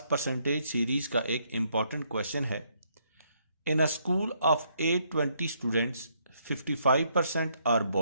परसेंटेज सीरीज़ का एक इम्पॉर्टेंट क्वेश्चन है। In a school of 820 students 55% are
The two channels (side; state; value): both; inverted; correlation -0.72